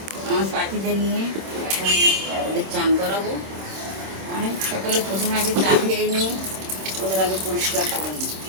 আমার পাখিদের নিয়ে। এখন ওদের চান করাবো। অনেক সকালে প্রথমে আগে চা খেয়ে নিই, ওদের আগে পরিষ্কার করে নিই।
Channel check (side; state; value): left; late; 26 ms